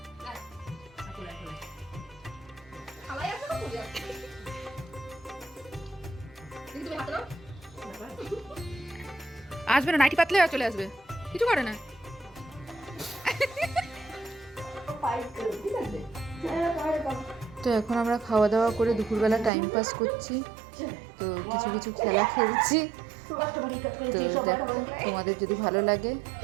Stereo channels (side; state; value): left; drops out; at 19.5 s